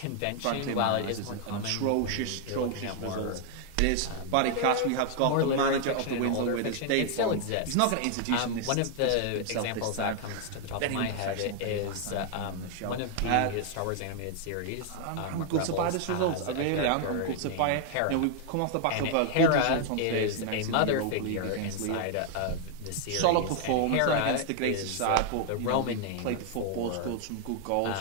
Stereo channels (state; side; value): different; both; correlation 0.00